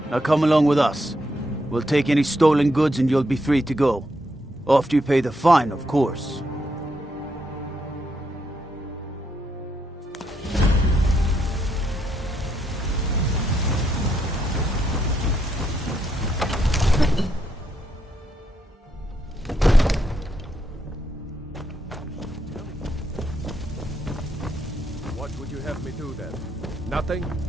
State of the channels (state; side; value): normal; both; correlation 0.78